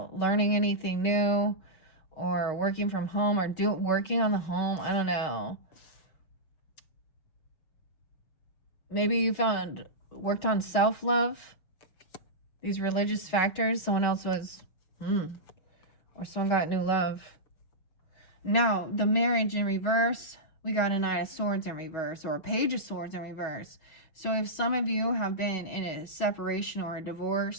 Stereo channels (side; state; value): right; late; 6.4 ms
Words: learning anything new or working from home or working on the home. I don't know. Maybe you worked on self-love, these religious factors. Someone else was, or someone got new love. Now, the marriage in reverse, we got a Knight of Swords in reverse or a Page of Swords in reverse. So if some of you have been in a separation or a